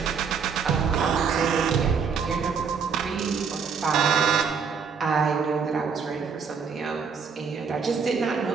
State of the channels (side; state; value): left; quieter; 5.9 dB